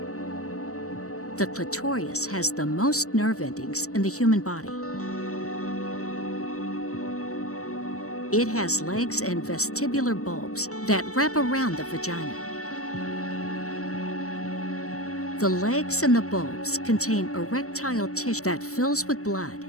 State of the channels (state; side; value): late; right; 0.65 ms